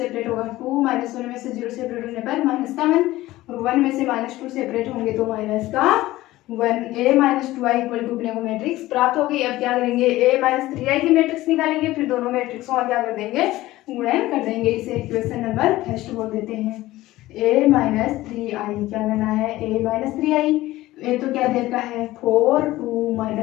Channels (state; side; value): quieter; right; 16.9 dB